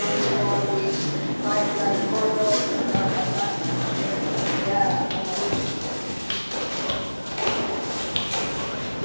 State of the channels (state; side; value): inverted; both; correlation -1.00